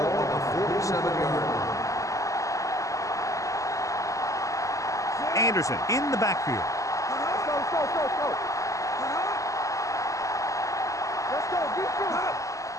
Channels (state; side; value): late; right; 0.16 ms